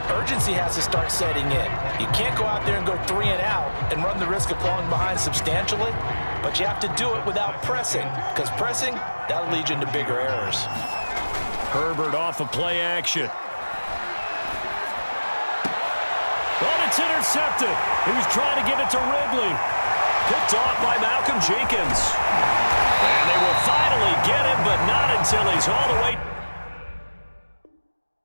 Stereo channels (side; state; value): both; inverted; correlation -1.00